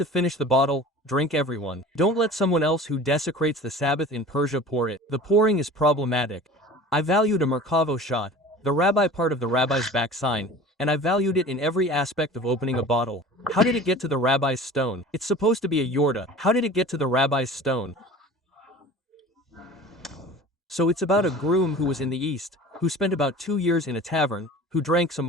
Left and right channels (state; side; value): normal; both; correlation 0.40